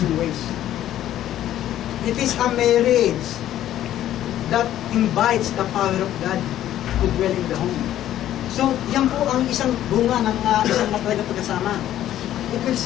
ways. It is a marriage that invites the power of God to dwell in the home. So, yan po ang isang bunga ng isang matatag na pagkasama. It will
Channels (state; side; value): quieter; right; 12.3 dB